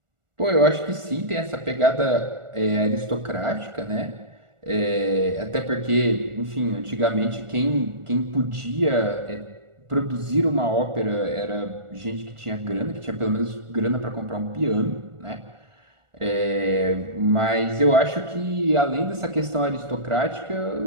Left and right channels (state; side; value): late; left; 1.4 ms